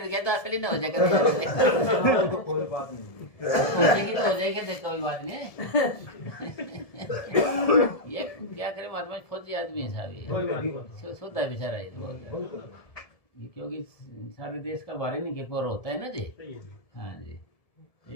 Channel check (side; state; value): right; late; 1.7 ms